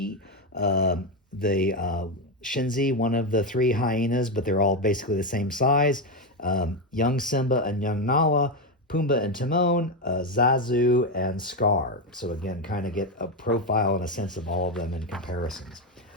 the Shenzi, one of the three hyenas, but they're all basically the same size, young Simba and young Nala, Pumbaa and Timon, Zazu and Scar. So again, kind of get a profile and a sense of all of them in comparisons.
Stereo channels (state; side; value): normal; both; correlation 0.10